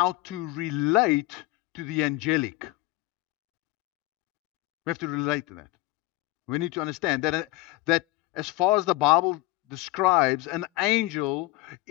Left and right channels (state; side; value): quieter; right; 18.9 dB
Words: to relate to the angelic. We have to relate to that. We need to understand that as far as the Bible describes, an angel